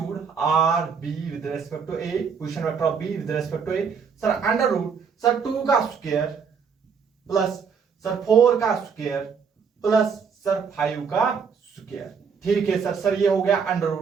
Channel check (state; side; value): quieter; left; 6.2 dB